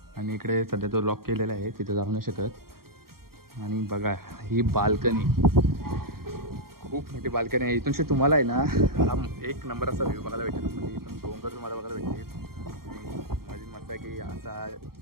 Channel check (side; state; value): left; late; 0.93 ms